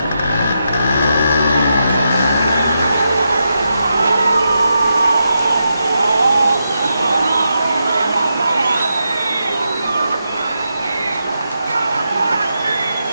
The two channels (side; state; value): both; inverted; correlation -0.85